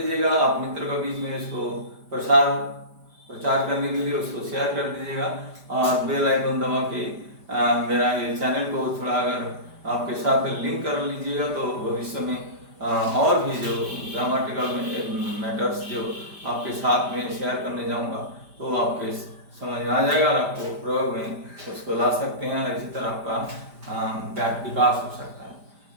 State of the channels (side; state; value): left; late; 5.0 ms